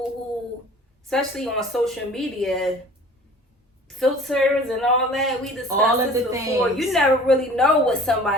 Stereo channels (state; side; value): normal; both; correlation 0.46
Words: who, especially on social media, filters and all that, we discussed all of this the before. things. You never really know what